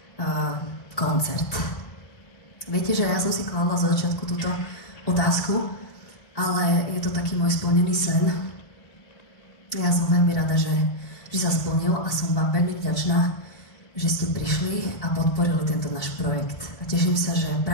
koncert? Viete, že ja som si kladla za začiatku túto otázku, ale je to taký môj splnený sen. Ja som veľmi rada, že sa splnil a som vám veľmi vďačná, že ste prišli a podporili tento náš projekt. A teším sa, že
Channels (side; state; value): right; late; 1.8 ms